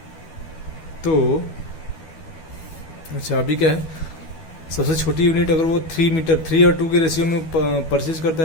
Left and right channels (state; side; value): late; right; 12 ms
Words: तो अच्छा, अभी क्या है, सबसे छोटी यूनिट अगर वो 3 और 2 के रेशियो में परचेज करता